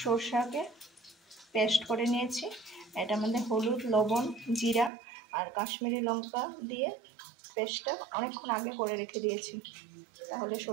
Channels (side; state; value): left; drops out; at 4.9 s